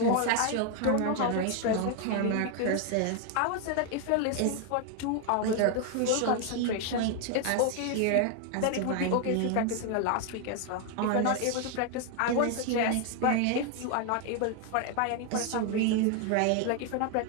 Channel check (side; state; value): both; different; correlation 0.00